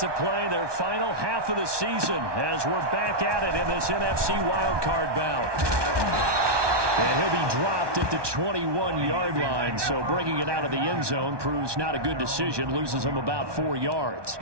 play their final half of the season as we're back at it in this NFC wildcard bout. And he'll be dropped at the 21-yard line, so bringing it out of the end zone proves not a good decision, loses him about 4 yards.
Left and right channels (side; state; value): left; late; 1.2 ms